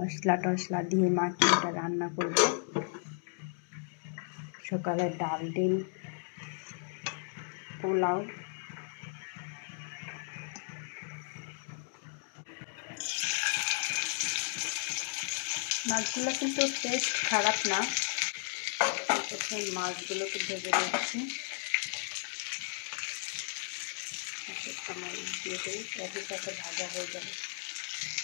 টশলা দিয়ে মাখিয়ে এটা রান্না করব। সকালে ডাল ডিম পোলাও। মাছগুলো কিন্তু টেস্ট খারাপ না। প্রথমে মাছগুলোকে ভেজে নিচ্ছি, দিয়ে দিই, সাথে সাথে ভাজা হয়ে যাবে।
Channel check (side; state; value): right; silent; 55 dB below the other